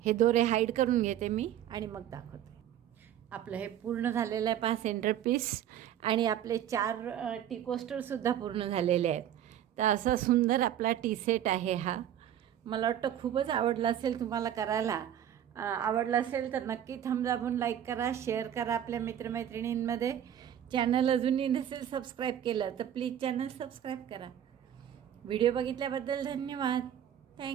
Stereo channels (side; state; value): left; quieter; 10.5 dB